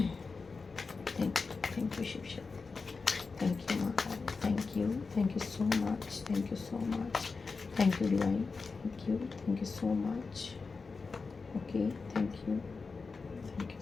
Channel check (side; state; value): right; quieter; 4.5 dB